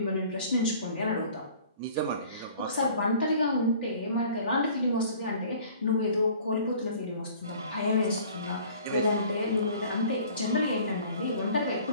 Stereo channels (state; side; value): inverted; both; correlation -0.49